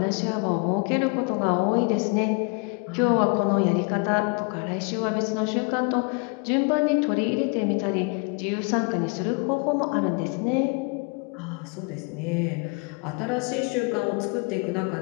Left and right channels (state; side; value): quieter; right; 32.9 dB